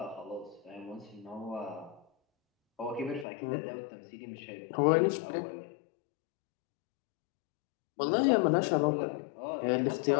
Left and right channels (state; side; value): drops out; right; at 3.2 s